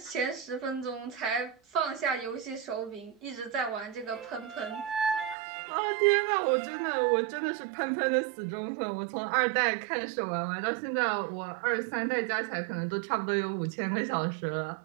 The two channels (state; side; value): drops out; left; at 5.4 s